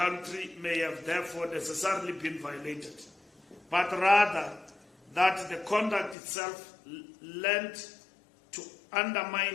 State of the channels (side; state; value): right; drops out; at 6.2 s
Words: may have therefore necessarily been violated, but rather that the conduct itself lent to